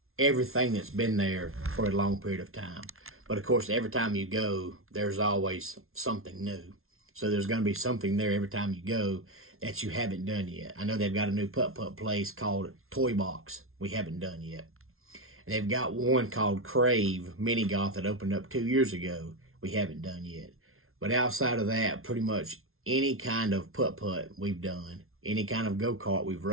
everything that's been there for a long period of time. But of course, every time you go, there's always something new. So there's going to be something there every time you go that you haven't done yet. I know they've got a new putt-putt place called Toy Box we haven't done yet. And they've got one called Crave Mini Golf that opened up 2 years ago we haven't done yet. But outside of that, pretty much any kind of putt-putt we've done, any kind of go-kart we've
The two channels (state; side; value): late; left; 0.62 ms